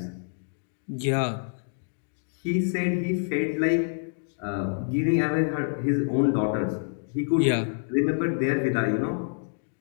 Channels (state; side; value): silent; right; digital silence